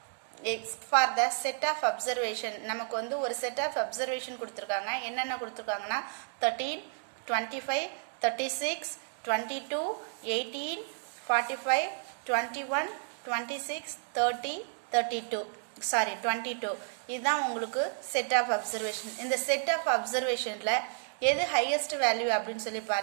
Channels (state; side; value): silent; left; digital silence